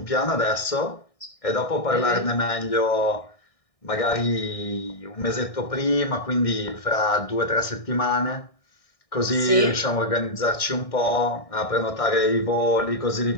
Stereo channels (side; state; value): right; late; 1.6 ms